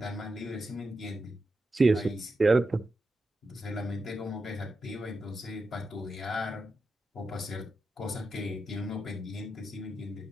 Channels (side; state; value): both; normal; correlation 0.88